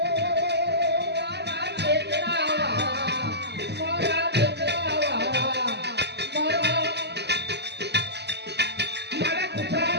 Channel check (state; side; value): late; left; 0.49 ms